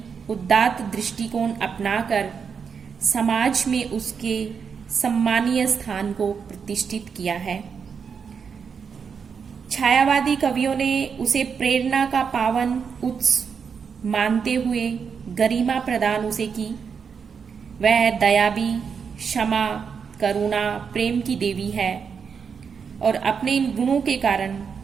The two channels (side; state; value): left; quieter; 6.3 dB